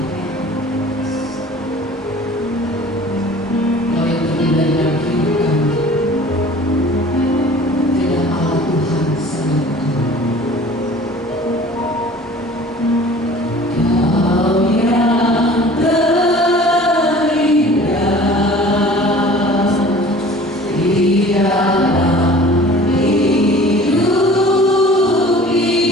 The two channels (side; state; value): both; normal; correlation 0.46